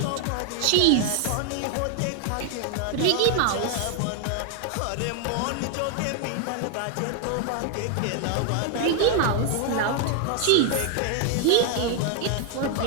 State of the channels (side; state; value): both; different; correlation 0.00